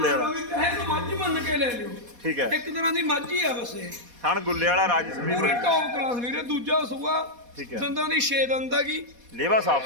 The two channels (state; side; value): late; left; 4.2 ms